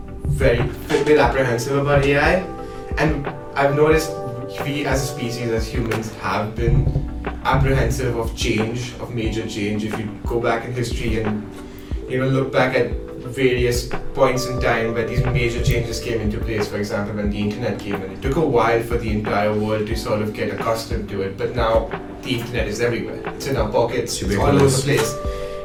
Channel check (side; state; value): both; identical; correlation 1.00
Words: apprehensive about AI, and I've noticed we, as a species, as humans, have been apprehensive of change, of major change. If you go back in history and look back at various points in time where these major changes came into place, for example when the internet came in, it took a while for the entire world to sort of get accustomed to it, but now the internet is everywhere. It's in our pockets, it's all over the place.